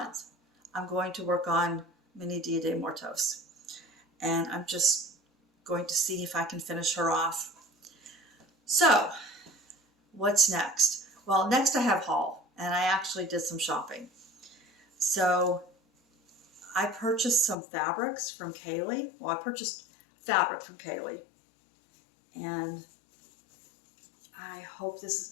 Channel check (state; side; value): drops out; right; at 17.6 s